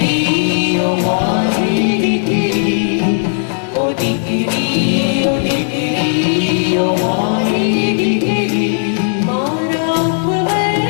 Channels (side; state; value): right; silent; digital silence